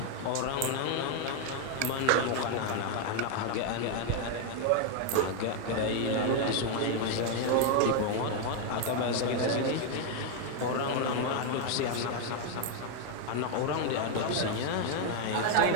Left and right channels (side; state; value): both; different; correlation 0.01